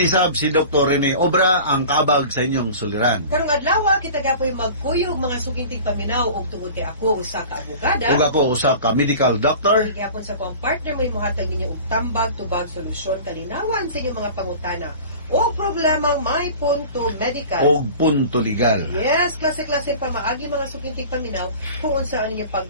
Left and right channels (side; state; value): both; inverted; correlation -0.40